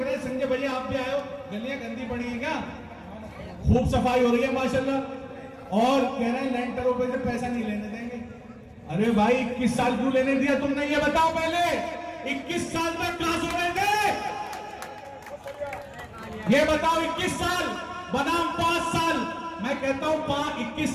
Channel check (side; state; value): both; identical; correlation 1.00